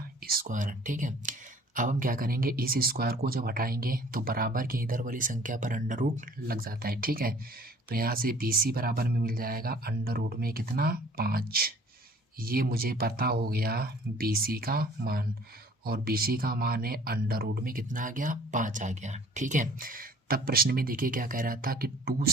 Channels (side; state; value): both; normal; correlation 0.53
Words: स्क्वायर। ठीक है, अब हम क्या करेंगे, इस स्क्वायर को जब हटाएंगे तो बराबर के इधर वाली संख्या पर अंडर रूट लग जाता है। ठीक है, तो यहाँ से BC बराबर में मिल जाएगा अंडर रूट में कितना 5। ये मुझे पता हो गया BC का मान और BC का मान है अंडर रूट में कितना आ गया 5 आ गया। ठीक है, तब प्रश्न में देखिए क्या कह रहा था कि 2